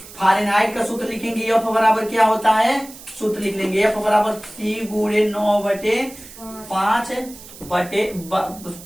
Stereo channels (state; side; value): noise; right; hiss, 18 dB below the sound